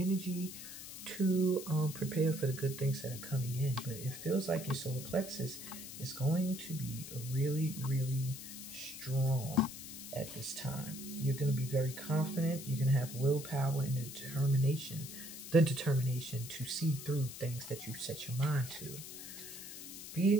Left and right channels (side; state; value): left; noise; hiss, 11 dB below the sound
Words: to prepare for the good things that are coming in. But it feels like your solar plexus is going to be really, really strong at this time. You're going to be very confident. You're going to have willpower and the determination to see through things that you set your mind to.